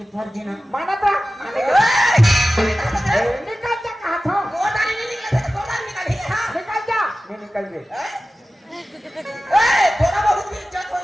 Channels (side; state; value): both; normal; correlation 0.95